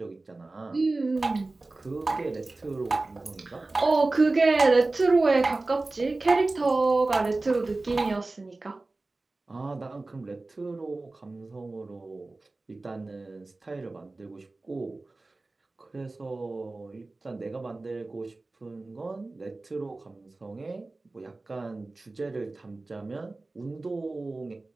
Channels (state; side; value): quieter; left; 3.2 dB